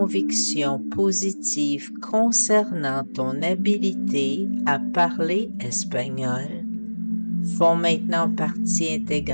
positives concernant ton habilité à parler espagnol font maintenant partie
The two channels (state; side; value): inverted; both; correlation -1.00